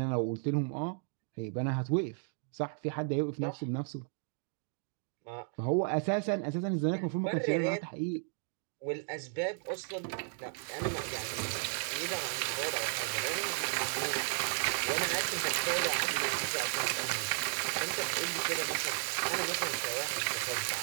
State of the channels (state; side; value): silent; left; 55 dB below the other